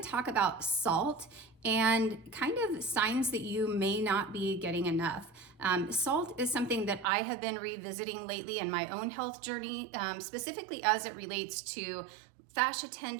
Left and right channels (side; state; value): left; drops out; at 7.1 s